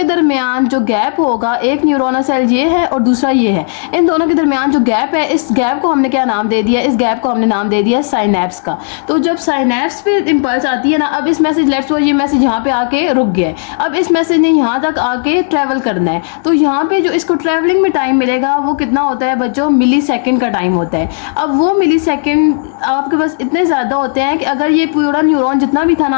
दरमियान जो गैप होगा, एक न्यूरोनल सेल ये है और दूसरा ये है, इन दोनों के दरमियान जो गैप है, इस गैप को हमने क्या नाम दे दिया, इस गैप को हमने नाम दे दिया साइनैप्स का। तो जब साइनैप्स पे इम्पल्स आती है ना, अब इस मैसेज, लेट्स सपोज ये मैसेज यहाँ पे आके रुक गया है, अब इस मैसेज ने यहाँ तक आके ट्रैवल करना है, तो यहाँ पे जो इसको ट्रैवलिंग में टाइम वो कितना होता है बच्चों, मिली सेकेंड का टाइम होता है। अब वो मिली सेकेंड आपके पास इतने ज़्यादा होते हैं कि अगर ये पूरा न्यूरॉन जितना भी था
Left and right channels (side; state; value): right; silent; digital silence